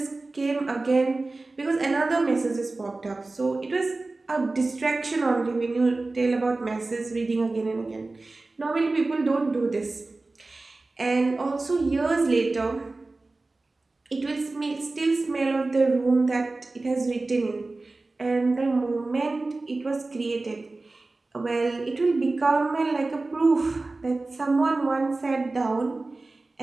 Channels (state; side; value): quieter; left; 3.3 dB